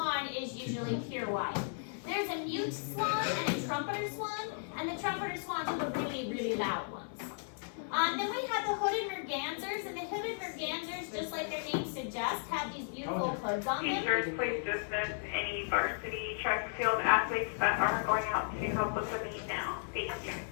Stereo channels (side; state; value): right; silent; 54 dB below the other